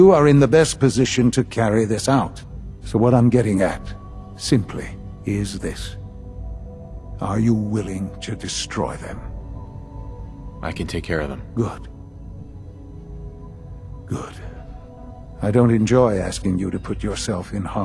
are in the best position to carry this out. So what I'm getting at, simply, is this. Are you willing to destroy them? I can take care of them. Good. Good. I don't enjoy asking you to put yourself in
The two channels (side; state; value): both; identical; correlation 1.00